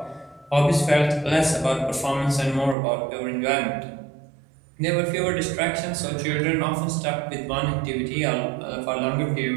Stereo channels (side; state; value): left; drops out; at 2.8 s